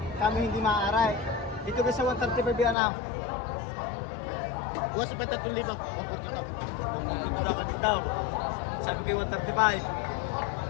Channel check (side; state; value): right; drops out; at 2.8 s